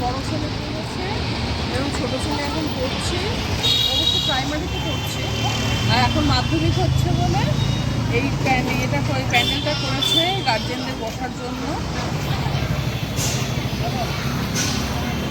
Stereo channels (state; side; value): identical; both; correlation 1.00